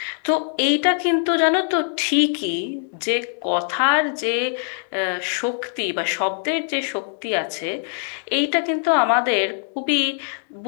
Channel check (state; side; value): silent; right; digital silence